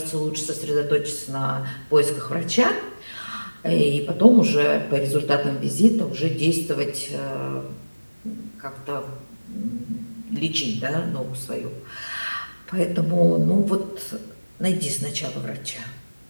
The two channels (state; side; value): inverted; both; correlation -1.00